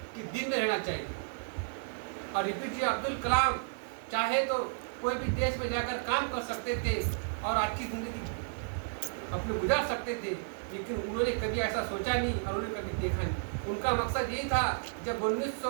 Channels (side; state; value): left; silent; 56 dB below the other